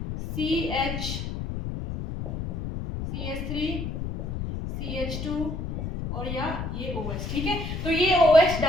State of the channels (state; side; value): noise; left; rumble, 5 dB below the sound